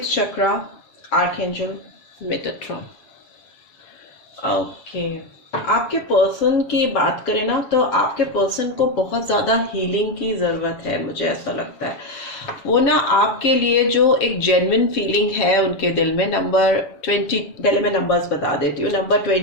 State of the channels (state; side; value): late; right; 7.1 ms